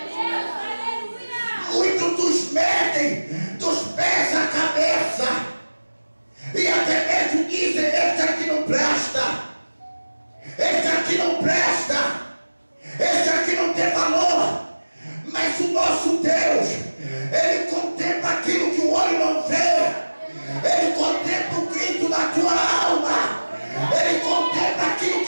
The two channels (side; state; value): both; inverted; correlation -1.00